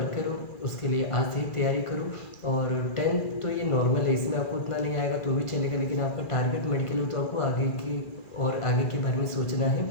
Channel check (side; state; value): right; late; 2.4 ms